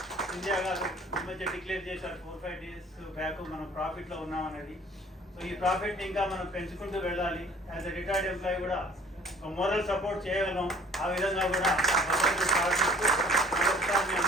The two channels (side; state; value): both; normal; correlation 0.53